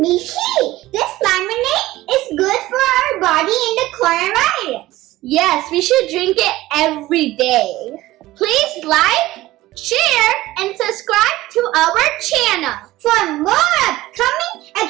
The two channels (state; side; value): quieter; left; 17.1 dB